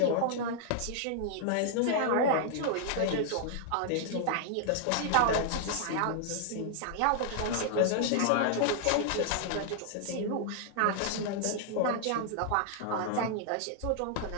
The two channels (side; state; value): both; different; correlation -0.01